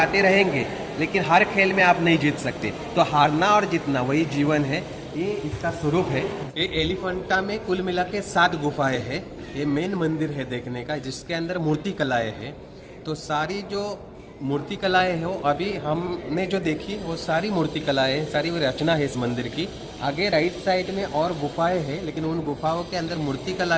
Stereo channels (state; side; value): identical; both; correlation 1.00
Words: रहेंगे, लेकिन हर खेल में आप नहीं जीत सकते। तो हारना और जीतना वही जीवन है, ये इसका स्वरूप है। ये एलिफेंटा में कुल मिला के 7 गुफाएं हैं। ये मेन मंदिर है देखने का, जिसके अंदर मूर्ति कलाएं हैं। तो सारी जो मूर्ति कलाएं हैं वो अभी हमने जो देखी वो सारी मूर्ति कलाएं हैं, सारी वो रचना है इस मंदिर की। आगे राइट साइड में और गुफाएं हैं, लेकिन उन गुफाओं के अंदर मूर्ति कला